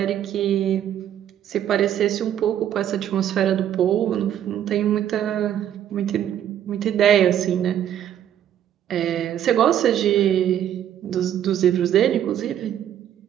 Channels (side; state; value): left; quieter; 10.5 dB